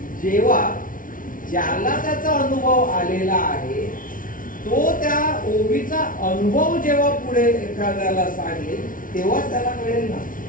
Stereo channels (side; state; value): right; late; 0.39 ms